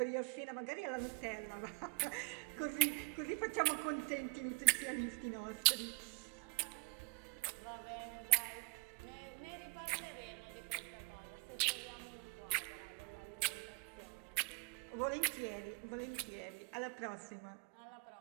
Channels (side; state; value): left; quieter; 33.6 dB